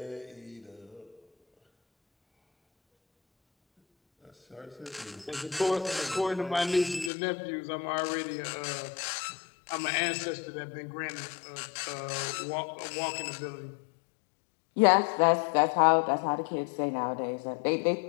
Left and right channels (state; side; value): drops out; right; at 7.1 s